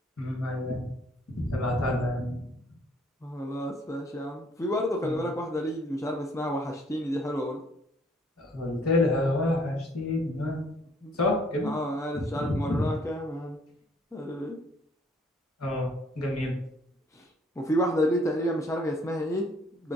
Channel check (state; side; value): normal; both; correlation 0.62